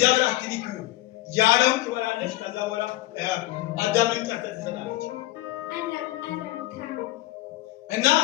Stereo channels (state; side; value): quieter; right; 17.4 dB